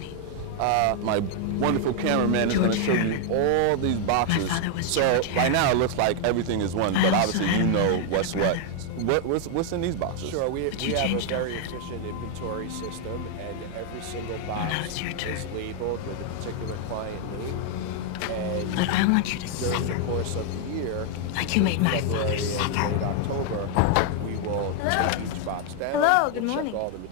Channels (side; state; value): both; different; correlation 0.00